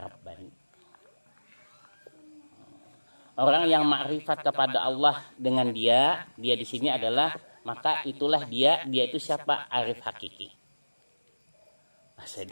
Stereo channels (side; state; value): both; inverted; correlation -1.00